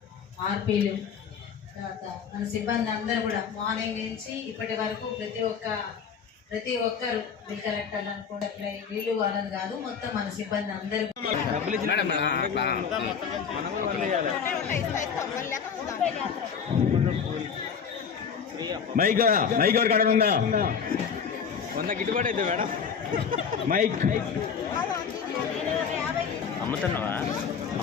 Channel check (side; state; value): right; quieter; 6.7 dB